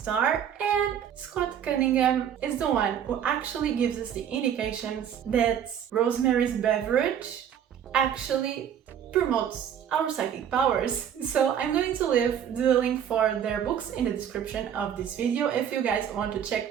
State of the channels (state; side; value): quieter; left; 9.1 dB